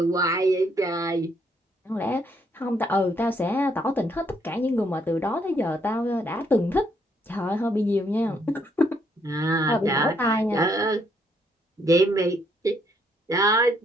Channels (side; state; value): both; normal; correlation 0.71